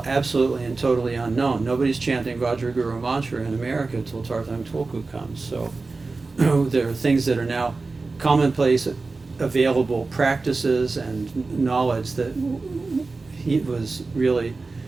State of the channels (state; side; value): quieter; left; 3.8 dB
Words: absolutely and totally unknown. Nobody's chanting Vajraguru mantra in America until Tarthang Tulku comes. So there are things that are now commonplace, available practices and knowledge that he was really